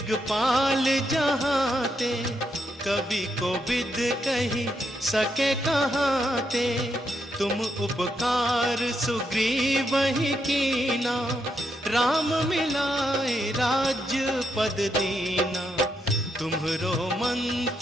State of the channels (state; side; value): normal; both; correlation 0.80